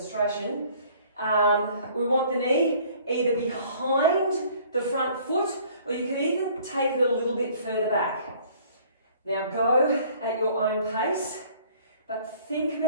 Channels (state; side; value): inverted; both; correlation -0.54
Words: we want the knee either behind the front foot, or you can even take it a little bit further back. Now go at your own pace, but think